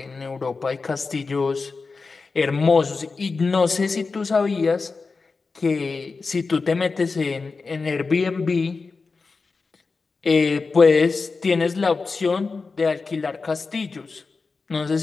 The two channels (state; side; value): quieter; right; 4.3 dB